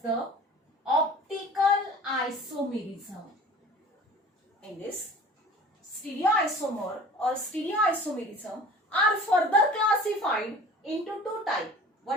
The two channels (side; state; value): both; normal; correlation 0.44